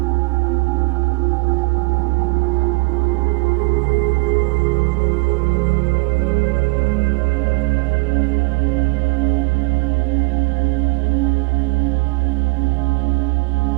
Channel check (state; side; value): quieter; left; 30.3 dB